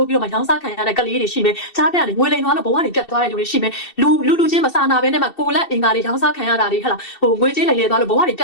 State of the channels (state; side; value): late; right; 2.7 ms